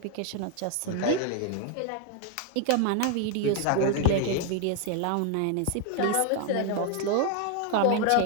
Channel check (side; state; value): both; different; correlation 0.01